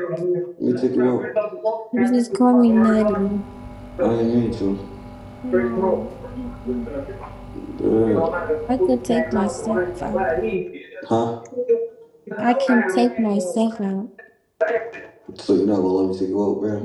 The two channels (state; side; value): identical; both; correlation 1.00